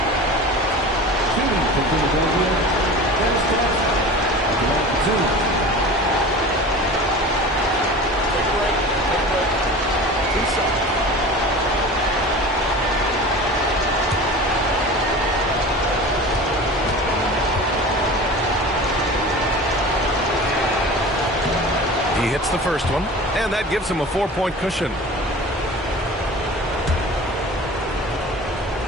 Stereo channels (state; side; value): normal; both; correlation 0.36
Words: He hits the first one, and that gives him a 4-point cushion.